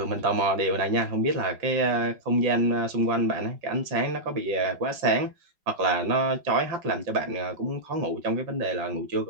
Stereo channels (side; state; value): left; late; 5.4 ms